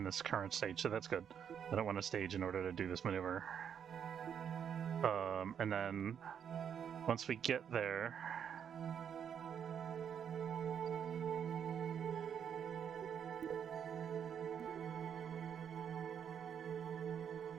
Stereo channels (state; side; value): quieter; left; 8.1 dB